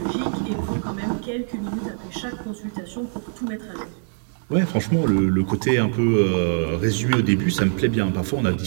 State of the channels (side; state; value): left; silent; digital silence